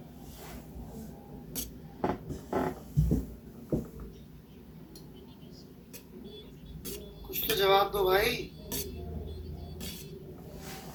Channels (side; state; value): both; identical; correlation 1.00